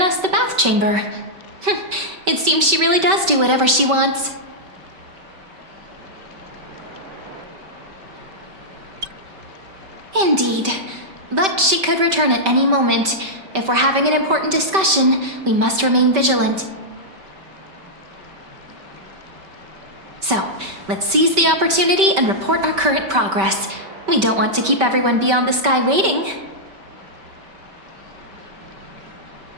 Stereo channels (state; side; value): late; left; 5.2 ms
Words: the bath chamber. It seems she really does do whatever she wants. Indeed. But she could return at any moment. If we're having an important discussion, we must remain vigilant. So, let's seize the opportunity and report our current progress. We don't want to keep everyone beyond the sky waiting.